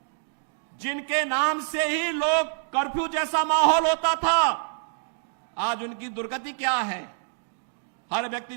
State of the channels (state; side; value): silent; left; digital silence